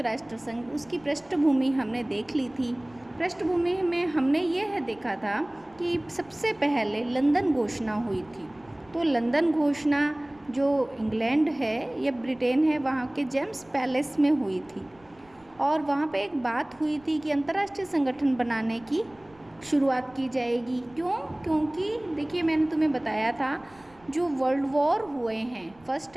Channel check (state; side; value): noise; right; rumble, 29 dB below the sound